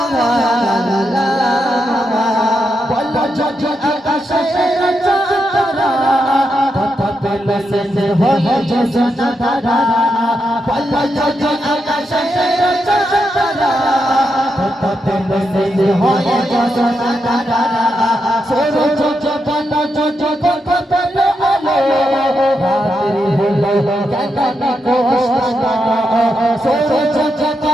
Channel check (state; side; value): normal; both; correlation 0.84